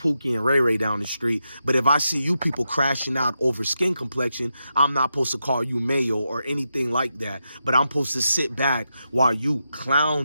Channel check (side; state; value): both; inverted; correlation -0.87